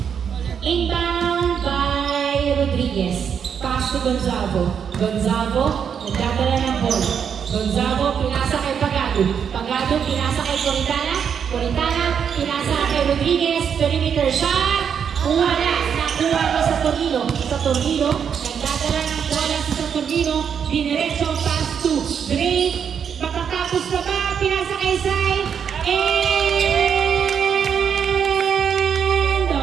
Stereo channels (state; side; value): quieter; left; 7.5 dB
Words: Inbound by Rodriguez. Pass to Gonzalo. Gonzalo, nagdadala ng bola. Gonzalo, pinasa kay Pagado. Pagado, pinasa kay Coritana. Coritana, pinasa kay Rodriguez. Perimeter shot. Wala. Nakuha mo sa Tornino. Sa Tornino, nagdadala ng bola sa Tornino. Diniretso, pass to Drake. Matatapos na ba? Pinasa kay Sai. End